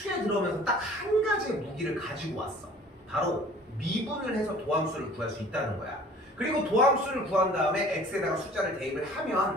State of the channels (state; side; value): normal; both; correlation 0.49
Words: 들어오면서 딱 한 가지의 무기를 가지고 왔어. 바로 미분을 해서 도함수를 구할 수 있다는 거야. 그리고 도함수를 구한 다음에 x에다가 숫자를 대입을